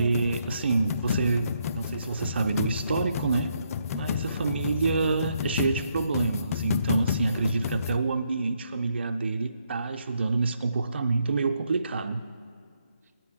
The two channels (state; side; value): inverted; both; correlation -0.76